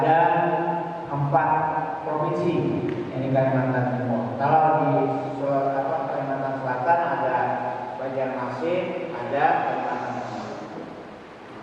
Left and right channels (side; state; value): both; identical; correlation 1.00